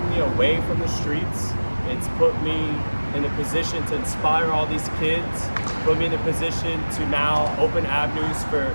me away from the streets. It's put me in a position to inspire all these kids, put me in a position to now open avenues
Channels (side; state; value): both; inverted; correlation -1.00